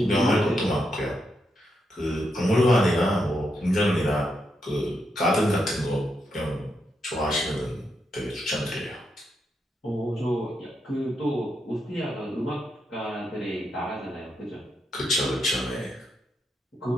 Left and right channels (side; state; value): both; normal; correlation 0.82